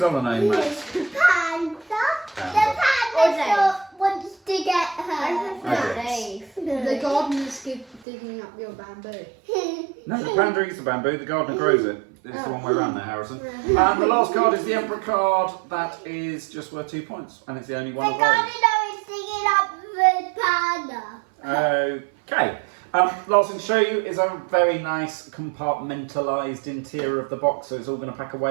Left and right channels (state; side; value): drops out; left; at 8.0 s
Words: other name, Max? Panda. Panda. The panda wants to get her. The gardener's digging up your bamboo. No, the panda eats the bamboo, the gardener grows it. It's the wrong way around there, Harrison. And the last card is the Emperor card. That is just worth 2 points. And it's the only one The of those. gardener is digging up the panda. Okay. Last thing to show you is a very nice compartmentalised interior of the box, so it's all going to pack